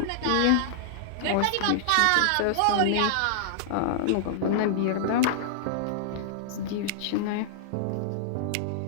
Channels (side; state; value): both; different; correlation -0.01